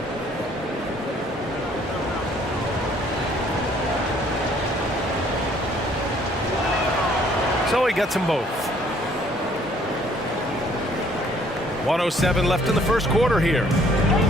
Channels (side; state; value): both; normal; correlation 0.61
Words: So he gets them both. 1:07 left in the first quarter here.